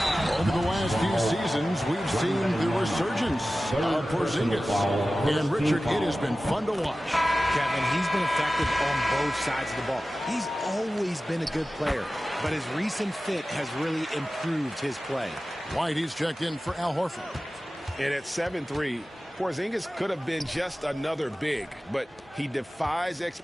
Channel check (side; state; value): both; normal; correlation 0.95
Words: Over the last few seasons, we've seen the resurgence of Porzingis. And Richard, it has been fun to watch. Kevin, he's been effective on both sides of the ball. He's always been a good player, but his recent fit has really improved his play. White, he's checked in for Al Horford. And at 7'3", Porzingis could have been just another big, but he defies